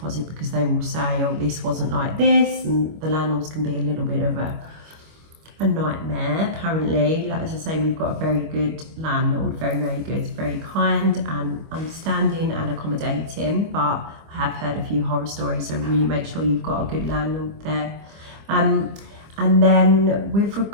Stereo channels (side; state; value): left; late; 25 ms